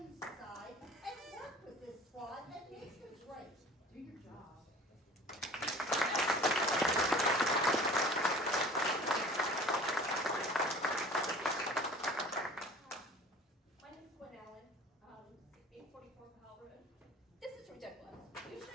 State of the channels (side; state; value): both; normal; correlation 0.44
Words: aside and work with this squad and make this right. Do your job. My name's Gwen Allen, 844 Powell Road. This is ridiculous. You